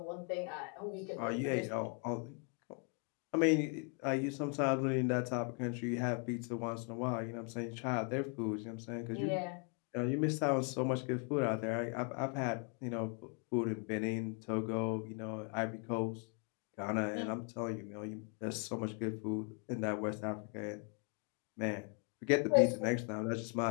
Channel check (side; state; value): right; quieter; 37.2 dB